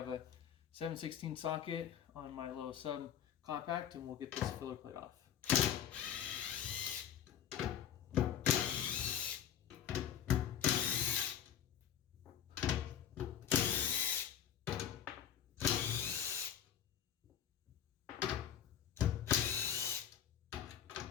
a 7/16 socket on my little sub compact, and we'll get this filler plate off.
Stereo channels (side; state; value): right; quieter; 9.6 dB